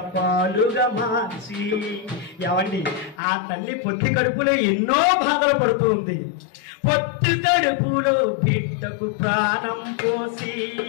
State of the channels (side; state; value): right; drops out; at 3.2 s